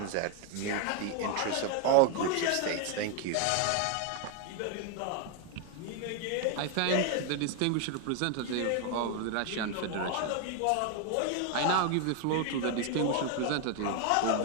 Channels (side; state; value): both; different; correlation 0.01